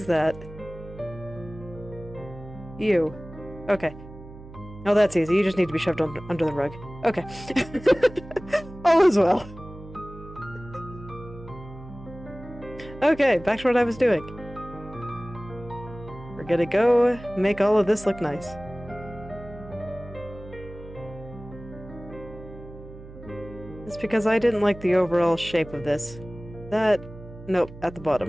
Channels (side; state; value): right; noise; hum, 16 dB below the sound